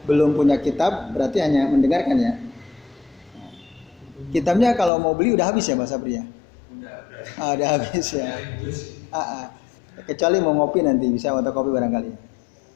belum punya kitab berarti hanya mendengarkan ya. Kitabnya kalau mau beli udah habis ya Pak Sabri ya? Udah habis ya. Kecuali mau ngopi nanti bisa fotokopi barangkali.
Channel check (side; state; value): right; drops out; at 4.9 s